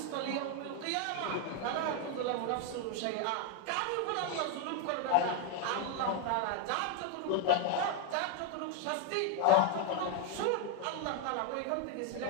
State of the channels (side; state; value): both; different; correlation 0.00